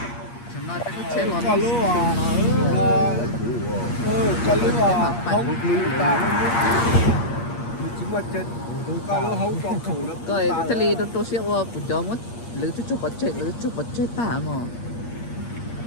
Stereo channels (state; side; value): late; right; 8.5 ms